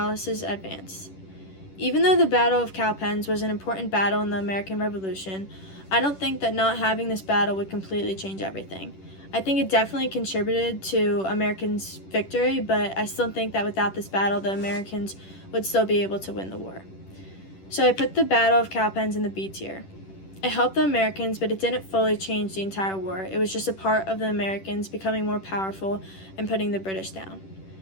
advance. Even though the Battle of Cowpens was an important battle in the American Revolution, I don't think that not having this battle would completely change everything. I think it definitely contributed to Americans' victory, but I still think that without this battle, the Americans would still be able to win the war. So I put the Battle of Cowpens in the B tier. It helped the Americans, but it didn't fully change the entire war. It was just a part of the Americans becoming more powerful and putting the British down.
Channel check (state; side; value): late; right; 10 ms